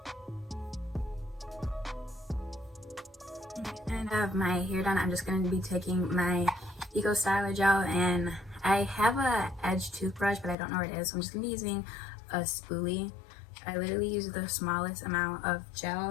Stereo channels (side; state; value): right; drops out; at 10.6 s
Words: And I have my hair done. I'm just going to be taking my Eco Styler gel, and I have a edge toothbrush, but I don't know where it is, so I'm just going to be using a spoolie. I literally use the smallest amount of